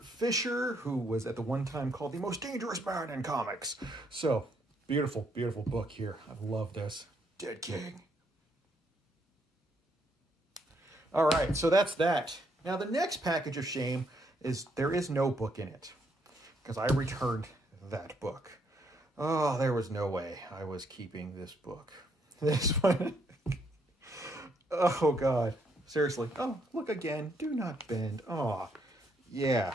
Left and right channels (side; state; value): both; normal; correlation 0.73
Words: Fisher, who was at the one time called the most dangerous man in comics. So, beautiful, beautiful book here. I love this. Dead King. All right, so that's that. Now, the next package of shame is there is no book in it because I returned that book. Oh, there was no way I was keeping this book. This one. Oh, God. Seriously. Oh, look again. Do Not Bend. Oh,